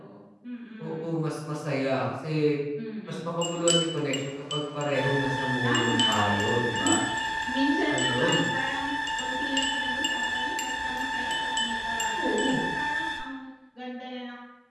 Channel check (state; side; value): identical; both; correlation 1.00